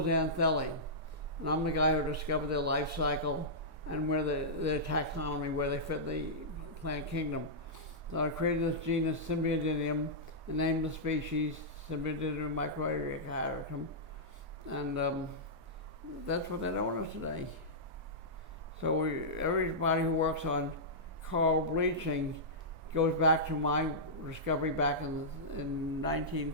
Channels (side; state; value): left; late; 2.9 ms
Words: And I'm the guy who discovered their life cycle and where their taxonomy, where they fit the plant kingdom. So I created this genus Symbiodinium and named the species Symbiodinium microericatum. And that's what they're known as today. So everybody who works on coral bleaching goes back to my discovery back in